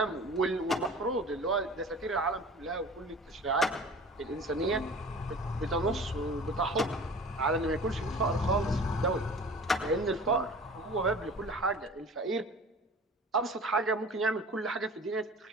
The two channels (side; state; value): both; normal; correlation 0.42